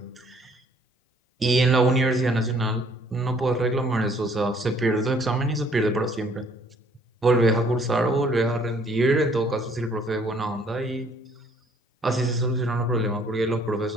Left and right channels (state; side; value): normal; both; correlation 0.61